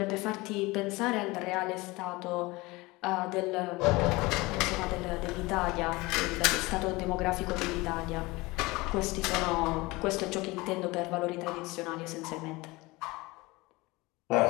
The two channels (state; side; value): quieter; right; 22.4 dB